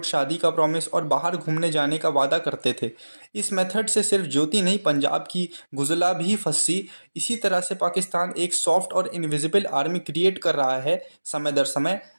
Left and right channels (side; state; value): both; inverted; correlation -1.00